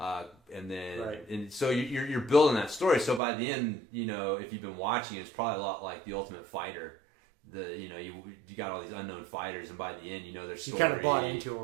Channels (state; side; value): drops out; left; at 3.2 s